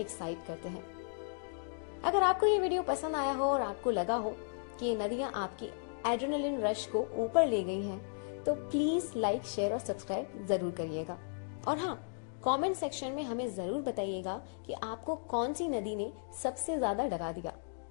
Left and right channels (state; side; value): silent; right; digital silence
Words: करते हैं। अगर आपको ये वीडियो पसंद आया हो और आपको लगा हो कि ये नदियां आपकी एड्रेनलिन रश को ऊपर ले गई हैं, तो प्लीज लाइक, शेयर और सब्सक्राइब जरूर करिएगा। और हाँ, कमेंट सेक्शन में हमें जरूर बताइएगा कि आपको कौन सी नदी ने सबसे ज्यादा डरा दिया,